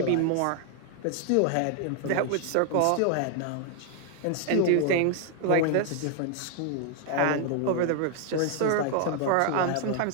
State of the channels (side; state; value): both; different; correlation 0.00